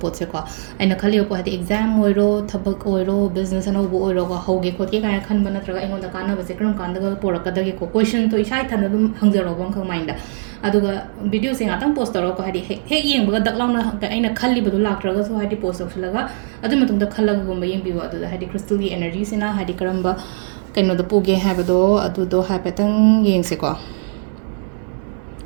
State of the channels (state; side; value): silent; left; 63 dB below the other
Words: ꯄꯣꯠꯁꯦꯀꯣ ꯑꯩꯅ ꯈꯜꯂꯤꯕ ꯄꯣꯠ ꯍꯥꯏꯗꯤ ꯑꯦꯛꯖꯥꯝ ꯑꯣꯏꯔꯣ ꯊꯕꯛ ꯑꯣꯏꯔꯣ ꯕꯤꯖꯤꯅꯦꯁ ꯑꯅꯧꯕ ꯑꯣꯏꯔꯣꯀꯣ ꯍꯧꯒꯦ ꯈꯣꯠꯀꯦ ꯀꯥꯏꯅ ꯈꯟꯕ ꯅꯠꯇ꯭ꯔꯒ ꯑꯩꯉꯣꯟꯗ ꯀꯥꯟꯅꯕꯁꯦ ꯀꯔꯝ ꯀꯥꯟꯗꯒ ꯄꯣꯔꯛꯀꯗꯒꯦꯀꯣ ꯀꯣꯏꯁꯟꯗꯣ ꯏꯁꯥ ꯏꯊꯟꯗ ꯑꯗꯨꯝ ꯍꯪꯖꯔꯛꯑꯣꯕ ꯑꯃꯈꯛ ꯃꯥꯏꯟꯗ ꯑꯗꯨꯒ ꯚꯤꯗꯤꯑꯣꯁꯦ ꯉꯥꯛꯇꯪ ꯄꯣꯁ ꯇꯧꯔꯒꯀꯣ ꯍꯥꯏꯗꯤ ꯍꯦꯛ ꯌꯦꯡꯕꯒ ꯗꯛ ꯂꯥꯎꯅ ꯑꯩꯅ ꯈꯜꯂꯤꯕꯗꯣ ꯂꯥꯛꯇ꯭ꯔꯒꯁꯨ ꯍꯥꯏꯗꯤ ꯄꯣꯁ ꯇꯧꯁꯤꯜꯂꯒ ꯑꯗꯨꯒꯤ ꯃꯇꯨꯡꯗ ꯈꯜꯂꯒꯒꯨꯝꯕ ꯌꯦꯡꯕꯤꯌꯨ ꯑꯗꯨꯗ ꯍꯥꯏꯗꯤ ꯀ꯭ꯔꯤꯁꯇꯜꯒꯤ 에너지ꯁꯤꯅ ꯍꯥꯏꯗꯤ ꯀꯔꯝꯕ ꯀꯩꯅꯣꯗ ꯄꯨꯒꯦ ꯍꯥꯏꯕꯗꯣ ꯑꯗꯨꯗꯣ ꯍꯥꯏꯐꯦꯠꯇꯪ ꯌꯦꯡꯁꯦꯀꯣ